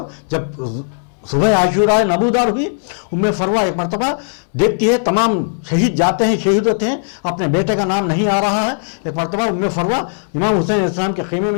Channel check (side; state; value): right; silent; 66 dB below the other